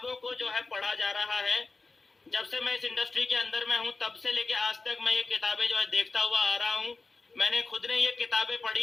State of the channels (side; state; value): right; quieter; 3.8 dB